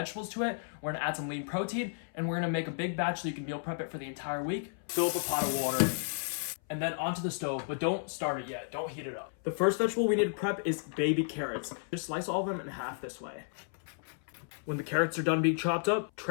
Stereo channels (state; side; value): silent; right; 56 dB below the other